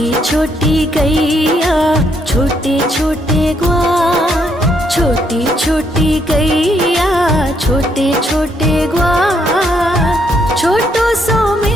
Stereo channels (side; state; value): both; normal; correlation 0.73